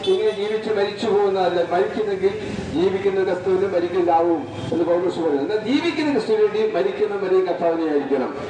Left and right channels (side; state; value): both; identical; correlation 1.00